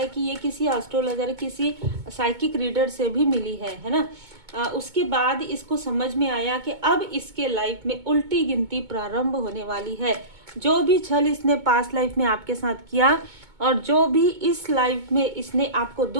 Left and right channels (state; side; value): late; left; 2.2 ms